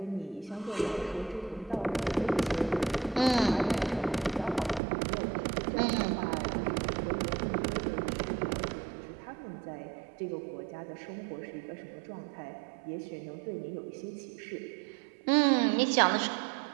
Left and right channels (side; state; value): left; drops out; at 4.8 s